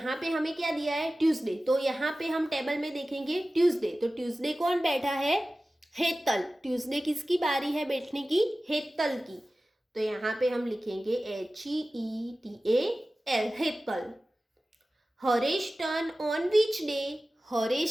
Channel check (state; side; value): normal; both; correlation 0.96